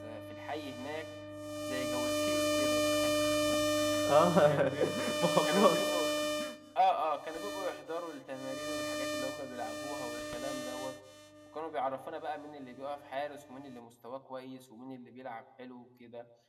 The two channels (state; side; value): identical; both; correlation 1.00